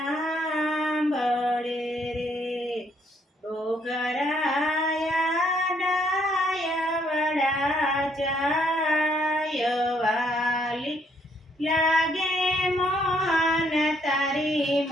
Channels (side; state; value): both; normal; correlation 0.69